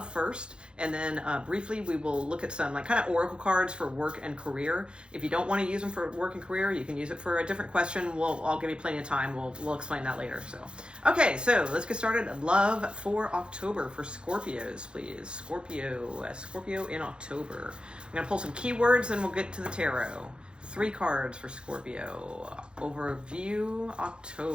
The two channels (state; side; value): late; left; 0.053 ms